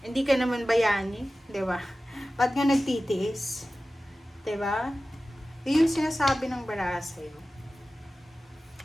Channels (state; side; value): normal; both; correlation 0.96